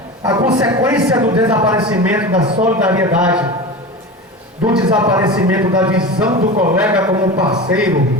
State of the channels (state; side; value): normal; both; correlation 0.28